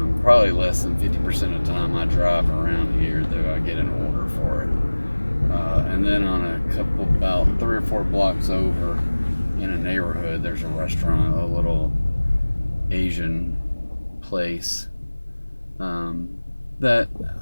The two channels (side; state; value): both; inverted; correlation -1.00